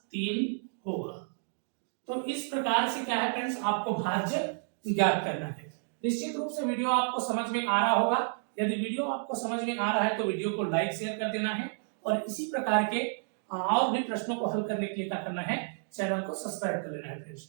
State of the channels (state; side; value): silent; left; 57 dB below the other